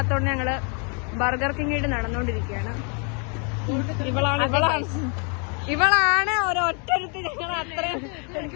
ഞങ്ങള് ബർഗർ കിങ്ങിട്ട് നടന്നുകൊണ്ടിരിക്കുകയാണ്. ഇവളാണ് ഒരൊറ്റരുത്തി ഞങ്ങൾ അത്രയും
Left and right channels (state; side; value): quieter; right; 38.5 dB